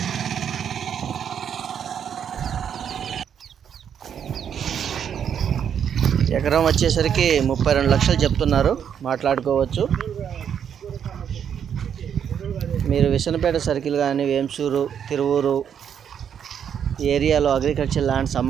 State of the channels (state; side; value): quieter; left; 8.3 dB